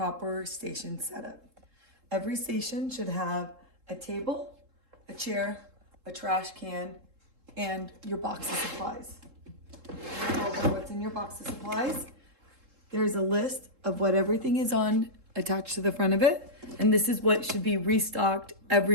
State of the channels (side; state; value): left; late; 3.7 ms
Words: station setup. Every station should have a table, a chair, a trash can, and your box of supplies. Over what's in your box of supplies, there's a list of what everything is on attached to the front of it, and this is what should be restocked